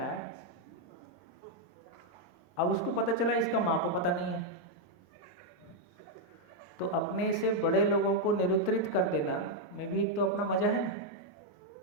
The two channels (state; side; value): normal; both; correlation -0.01